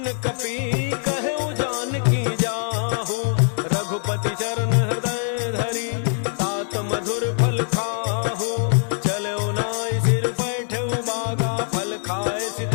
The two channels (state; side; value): silent; right; 63 dB below the other